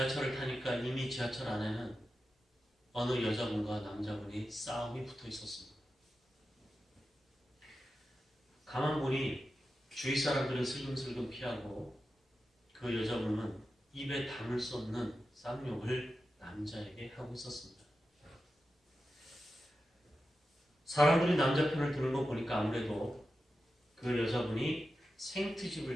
타니까 이미 지하철 안에는 어느 여자분과 남자분이 싸움이 붙어 있었습니다. 가만 보니 주위 사람들은 슬금슬금 피하고 그 여자분은 입에 담을 수 없는 쌍욕을 남자에게 하고 있었습니다. 사람들이 남자 편을 드는 거 보니까 아무래도 그 여자분이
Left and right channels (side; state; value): both; normal; correlation 0.91